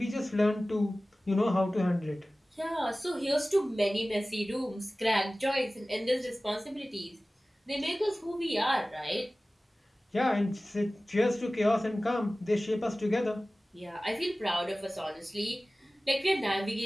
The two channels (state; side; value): normal; both; correlation 0.97